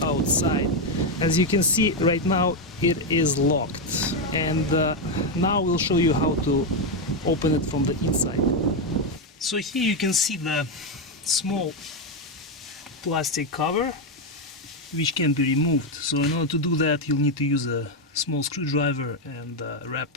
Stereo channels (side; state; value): both; normal; correlation 0.05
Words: outside. As you can see right now, it is locked, and now we'll show you how to open it from the inside. So here you can see the small plastic cover which can be removed. So in order to do that, you'll need to use a small screwdriver and